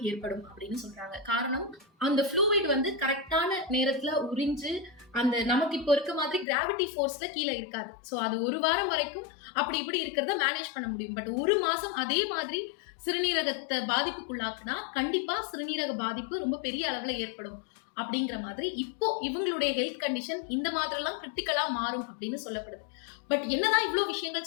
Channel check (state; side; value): drops out; right; at 6.5 s